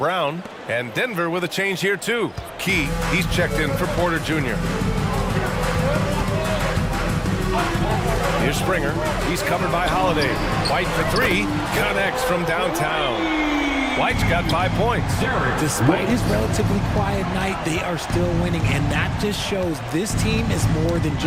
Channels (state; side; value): identical; both; correlation 1.00